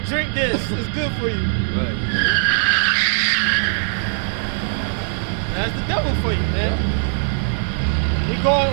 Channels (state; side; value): silent; left; 65 dB below the other